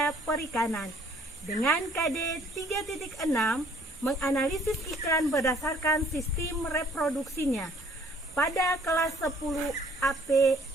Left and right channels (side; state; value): both; normal; correlation 0.58